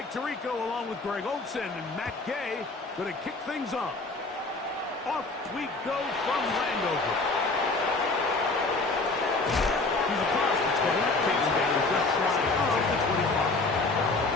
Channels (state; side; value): quieter; right; 3.4 dB